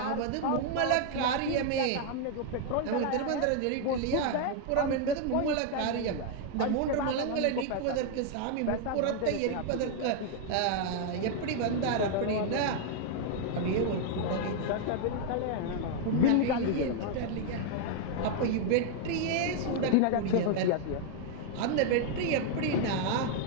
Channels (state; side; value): different; both; correlation 0.00